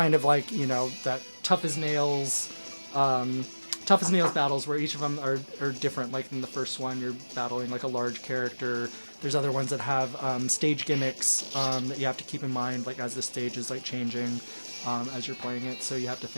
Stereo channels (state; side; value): inverted; both; correlation -1.00